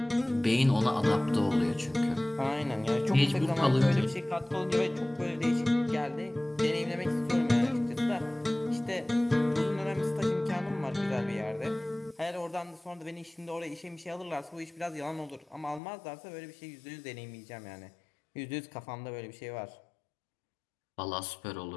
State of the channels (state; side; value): drops out; right; at 15.8 s